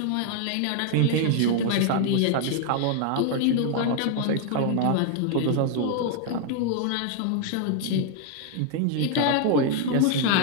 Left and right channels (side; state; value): both; different; correlation 0.00